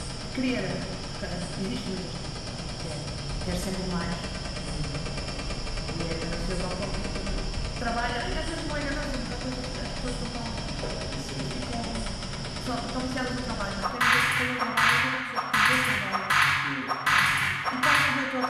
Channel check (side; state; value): both; identical; correlation 1.00